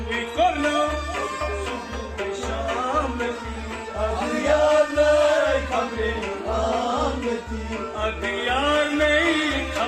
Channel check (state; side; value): identical; both; correlation 1.00